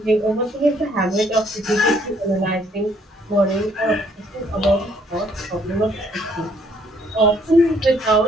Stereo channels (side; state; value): both; normal; correlation 0.65